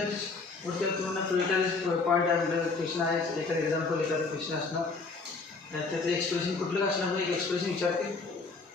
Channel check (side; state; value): right; quieter; 4.1 dB